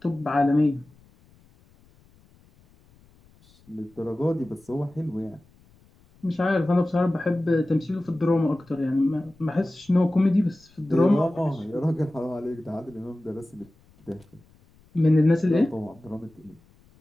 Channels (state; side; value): noise; left; rumble, 30 dB below the sound